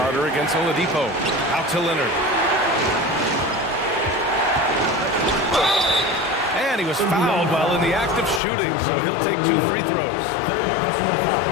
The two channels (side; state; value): right; drops out; at 8.4 s